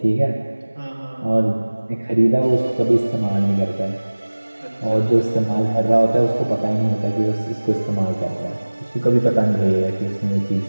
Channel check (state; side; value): inverted; both; correlation -1.00